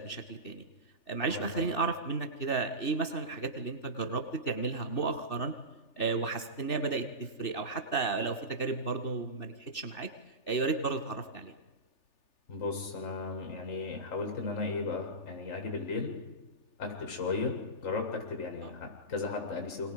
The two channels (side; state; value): right; late; 3.4 ms